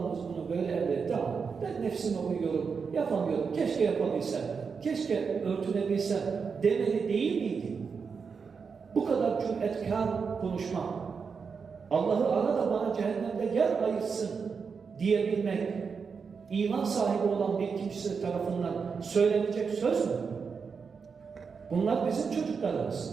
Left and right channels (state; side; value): quieter; left; 5.6 dB